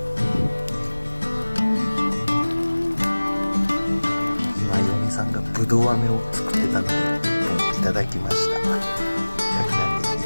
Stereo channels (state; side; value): inverted; both; correlation -1.00